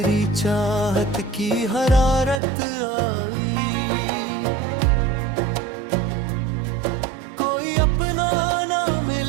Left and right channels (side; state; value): left; drops out; at 2.4 s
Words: चाहत की हरारत आई। कोई अपना ना